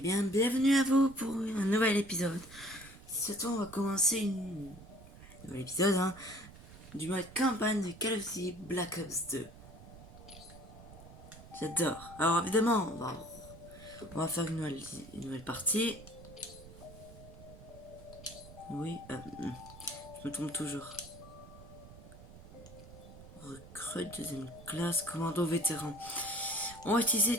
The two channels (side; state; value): right; noise; rumble, 17 dB below the sound